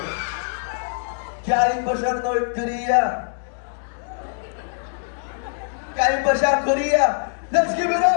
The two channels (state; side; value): silent; right; digital silence